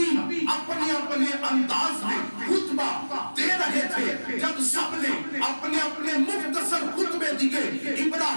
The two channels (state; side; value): inverted; both; correlation -1.00